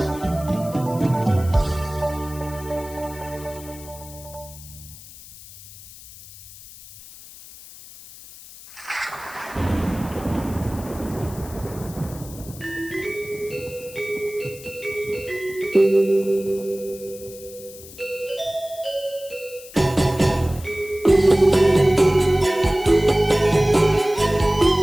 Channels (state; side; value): noise; left; hiss, 18 dB below the sound